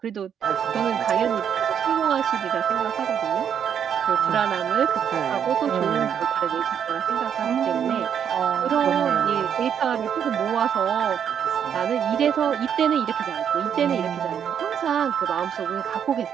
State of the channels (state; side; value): quieter; left; 8.4 dB